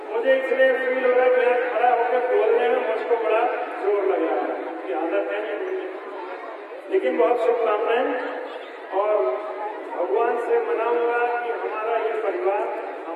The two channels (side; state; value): both; identical; correlation 1.00